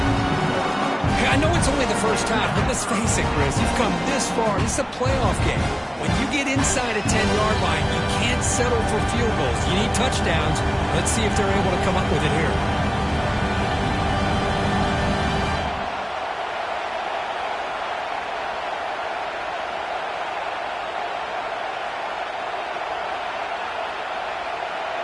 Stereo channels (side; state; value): both; identical; correlation 1.00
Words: I I know it's only the first half, but let's face it, Chris, you've come this far. This is a playoff game. When you get inside a 10-yard line, you can't settle for field goals. You need touchdowns. Let's see if they're able to come up with it here.